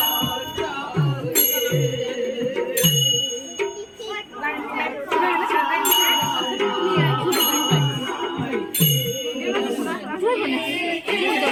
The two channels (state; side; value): identical; both; correlation 1.00